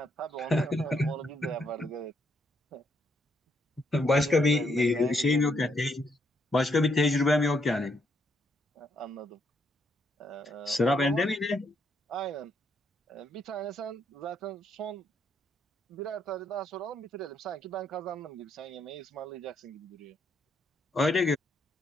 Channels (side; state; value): both; normal; correlation 0.75